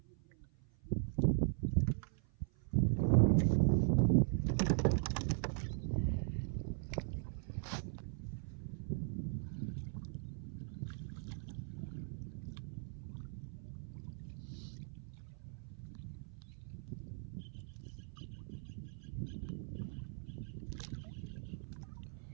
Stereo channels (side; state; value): left; silent; 51 dB below the other